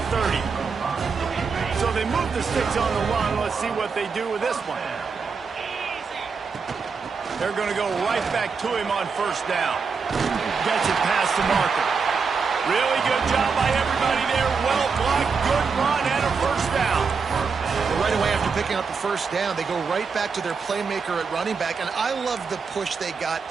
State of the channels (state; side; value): quieter; left; 5.3 dB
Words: 30. So they move the sticks on the run. Let's see what they do with this one. They're going to go right back to him on first down. Gets it past the marker. Really good job by everybody there. Well blocked, good run, and a first down. Right away after picking up the first down, they go right back to their playmaker at running back. And I love the push they got